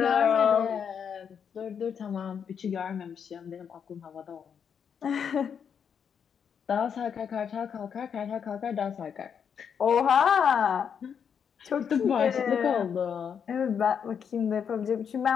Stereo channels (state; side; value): quieter; right; 7.4 dB